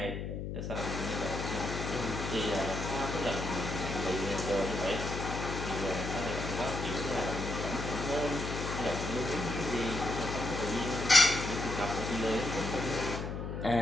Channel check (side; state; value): left; noise; hum, 4 dB below the sound